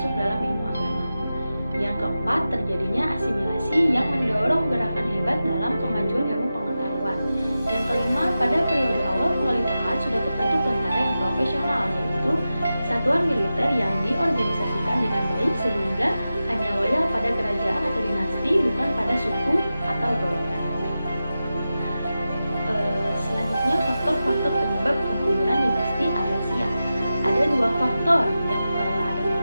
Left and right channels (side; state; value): both; inverted; correlation -0.93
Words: dalam ilmu agama. Yang keempat, terjadinya asimilasi yang mendorong gerakan hebat dalam kemajuan ilmu pengetahuan. Yang kelima, pada periode awal kekhalifahan sudah terbentuk tentara yang profesional, yaitu satuan militer yang diorganisasikan dengan baik sehingga hanya loyal pada kerajaan atau dinasti, bukan pada suku atau golongan. Selanjutnya, faktor-faktor penyebab kemunduran dinasti Abbasiyah. Ada dua faktor, yang ada